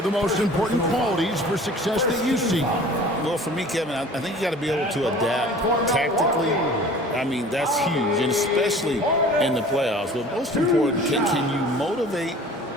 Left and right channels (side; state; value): both; normal; correlation 0.45